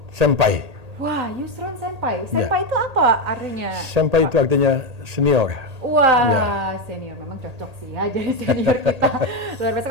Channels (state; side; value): late; left; 1.8 ms